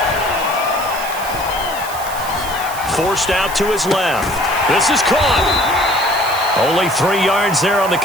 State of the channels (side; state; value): right; noise; hiss, 12 dB below the sound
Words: Forced out to his left. This is caught. Only 3 yards there on the